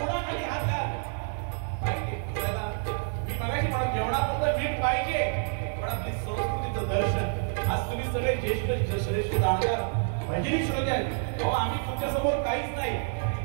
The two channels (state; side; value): silent; left; 59 dB below the other